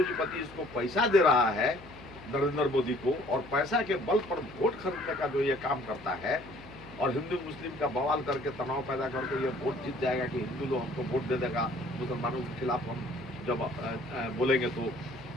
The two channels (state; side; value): noise; left; hum, 20 dB below the sound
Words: इसको पैसा दे रहा है नरेंद्र मोदी को, और पैसा के बल पर वोट खरीदने का जो ये काम करता है, और हिंदू मुस्लिम का बवाल करके तनाव पैदा करके ये वोट जीत जाएगा कि हिंदू लोग हमको वोट दे देगा, मुसलमानों के खिलाफ हम जब बोलेंगे तो